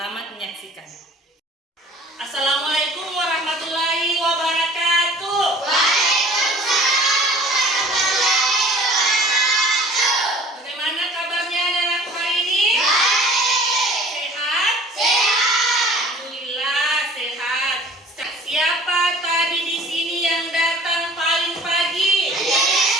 menyaksikan. Assalamualaikum warahmatullahi wabarakatuh. Waalaikumsalam warahmatullahi wabarakatuh. Bagaimana kabarnya anak-anak hari ini? Baik. Sehat? Sehat. Alhamdulillah sehat. Siapa tadi di sini yang datang paling pagi?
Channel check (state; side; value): normal; both; correlation 0.48